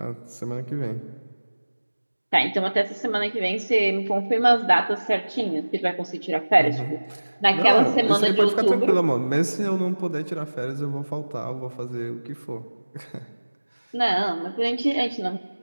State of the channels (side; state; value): both; inverted; correlation -1.00